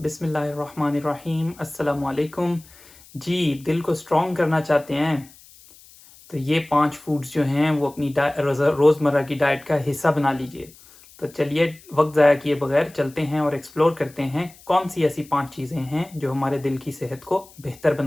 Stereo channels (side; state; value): left; noise; hiss, 24 dB below the sound